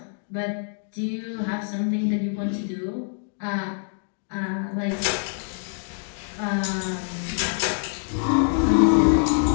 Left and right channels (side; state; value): right; silent; digital silence